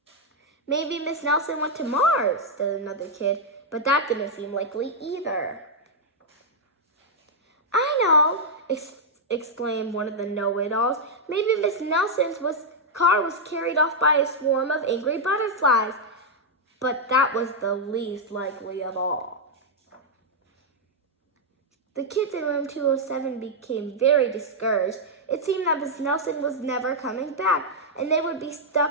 "Maybe Miss Nelson went to Mars," said another kid, but that didn't seem likely either. "I know," exclaimed one of the know-it-alls. "Maybe Miss Nelson's car was carried off by a swarm of angry butterflies." But that was the least likely of all. The kids in room 207 became very discouraged. It seemed that Miss Nelson was never coming back, and they would be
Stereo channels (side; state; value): both; normal; correlation -0.03